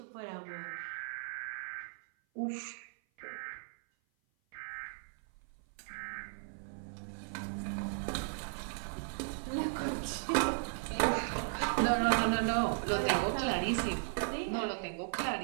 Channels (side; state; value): left; silent; 54 dB below the other